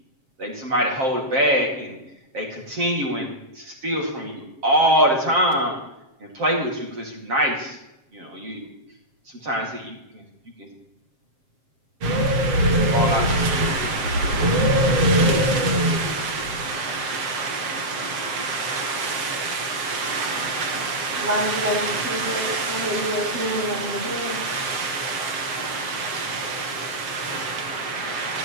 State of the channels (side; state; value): left; late; 7.5 ms